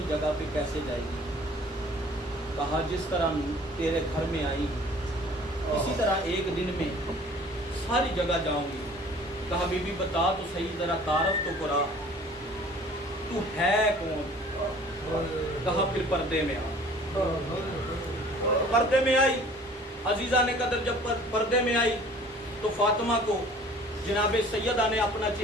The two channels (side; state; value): both; normal; correlation 0.50